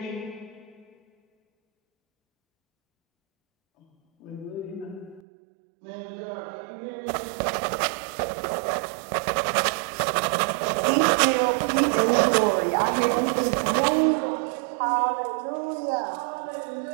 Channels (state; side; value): drops out; left; at 5.2 s